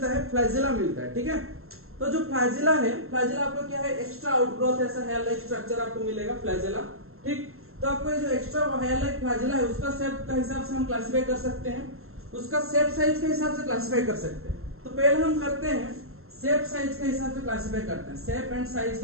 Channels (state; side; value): late; left; 0.62 ms